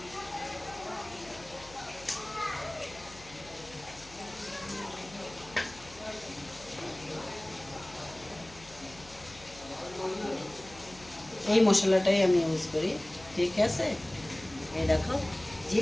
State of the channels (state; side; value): noise; left; hum, 20 dB below the sound